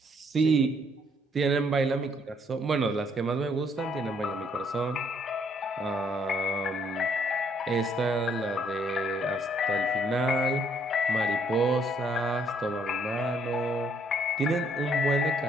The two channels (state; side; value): normal; both; correlation 0.68